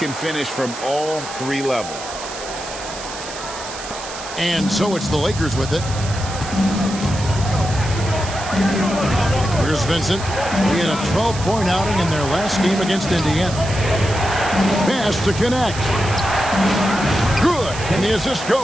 finish from all 3 levels. And so it's the Lakers with it. Here's Vincent. He had a 12-point outing in their last game against Indiana. Pass to connect. Good. And the assist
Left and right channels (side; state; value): right; noise; hiss, 11 dB below the sound